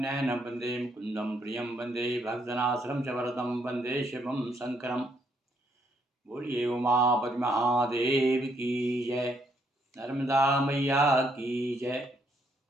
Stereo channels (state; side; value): normal; both; correlation 0.72